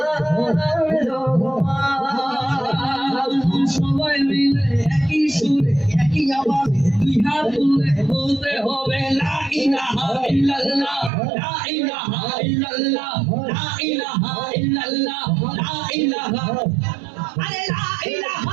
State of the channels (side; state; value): left; drops out; at 11.1 s